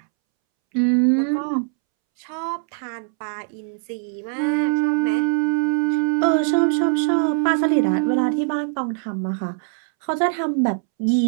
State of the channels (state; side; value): silent; left; 64 dB below the other